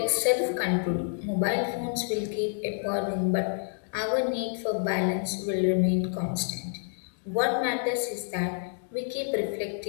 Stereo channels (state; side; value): silent; right; digital silence